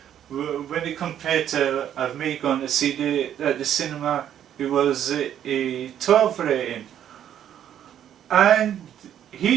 when it compared to me going to see it at the cinema, it was a 12 rating. And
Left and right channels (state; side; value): quieter; left; 10.2 dB